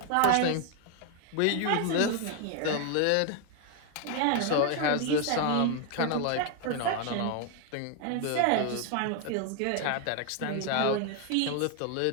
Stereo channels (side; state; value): both; different; correlation 0.01